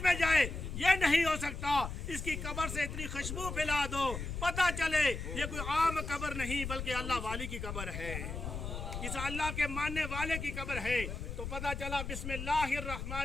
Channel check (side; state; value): left; noise; rumble, 6 dB below the sound